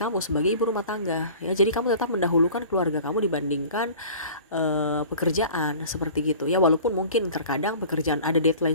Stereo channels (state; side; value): inverted; both; correlation -0.43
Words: sebagai ibu rumah tangga ya. Jadi kamu tetap mendahulukan keluarga kamu dibandingkan pekerjaan seperti gitu ya. Walaupun mungkin terkadang pekerjaan ada